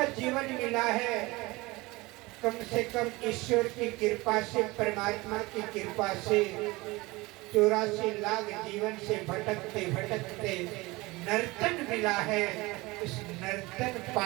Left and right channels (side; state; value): left; quieter; 22.2 dB